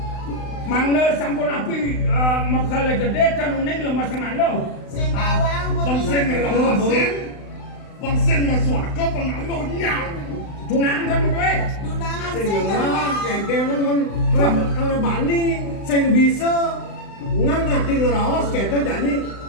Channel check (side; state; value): right; late; 35 ms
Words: Mangga sampun api makala gede tanuning lemas ngalo. Sing bawang Bangsen ngelawasin. Bangsen maswaka pengalunya. Tunang kan kowe. Dunangan sing sing ngerang kengken men kalau bani sing bisa ngangati ngeraos kita jadi